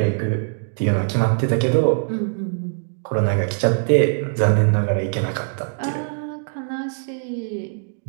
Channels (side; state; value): left; silent; 64 dB below the other